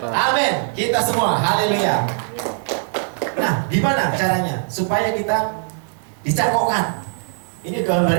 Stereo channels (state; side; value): silent; left; digital silence